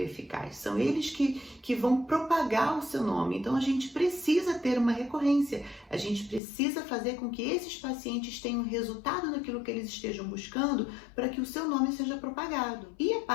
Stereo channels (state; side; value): drops out; right; at 6.4 s